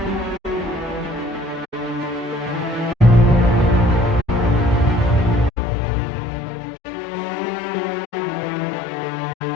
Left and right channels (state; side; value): drops out; right; at 5.5 s